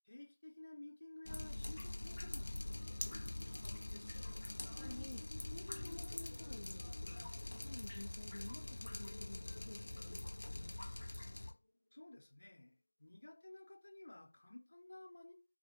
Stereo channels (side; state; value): both; inverted; correlation -1.00